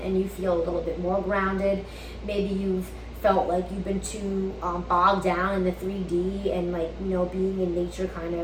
and you feel a little bit more grounded. Maybe you've felt like you've been too bogged down in the 3D, and like, you know, being in nature kind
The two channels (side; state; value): both; identical; correlation 1.00